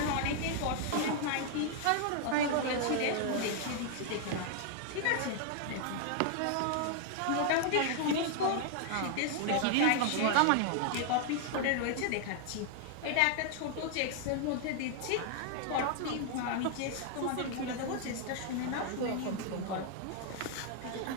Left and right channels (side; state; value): both; different; correlation 0.00